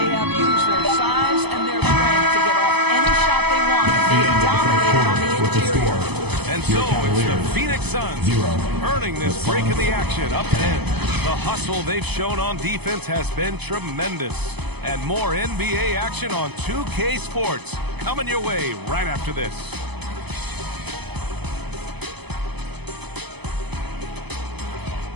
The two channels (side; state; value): left; late; 0.98 ms